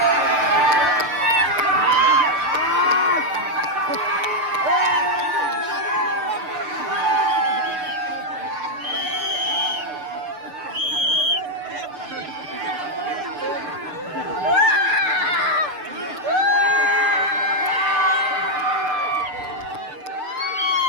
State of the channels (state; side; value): late; left; 6.8 ms